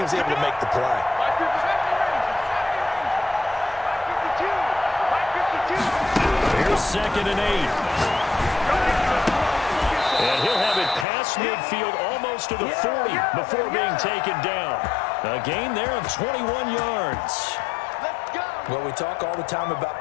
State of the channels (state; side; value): drops out; right; at 11.1 s